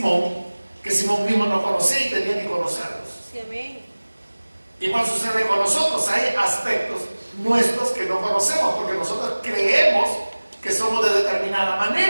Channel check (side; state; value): both; inverted; correlation -1.00